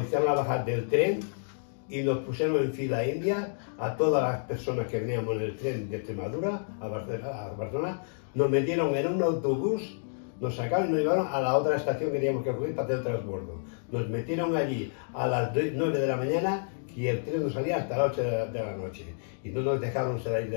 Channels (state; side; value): silent; right; digital silence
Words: hicieron bajar del tren y nos pusieron en fila india a todas las personas que veníamos en el tren de Extremadura a Barcelona. Nos metieron en un autobús, nos sacaron y nos llevaron a la otra estación que teníamos que coger para hacer el transbordo. Nos metieron allí a las 9 de la mañana y el tren no salía hasta las 8 de la noche. Y no nos dejaron salir de